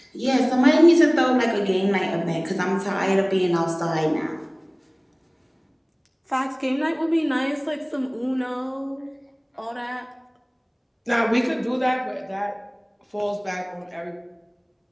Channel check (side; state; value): both; identical; correlation 1.00